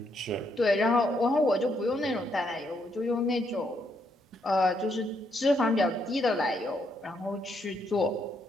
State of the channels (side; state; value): both; normal; correlation 0.75